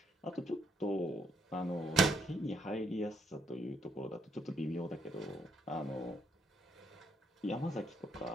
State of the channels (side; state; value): both; normal; correlation 0.72